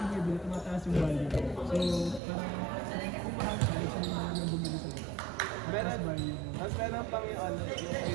yung bibili, tumataas yung value. So, parang kung mahal ka, isa na naman yung bumili sa baba. Meron, value mo. mas meron pang yung ano, yung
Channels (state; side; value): drops out; left; at 2.2 s